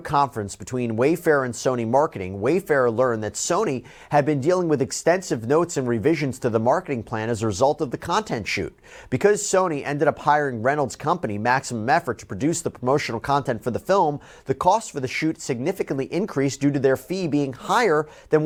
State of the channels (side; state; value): both; identical; correlation 1.00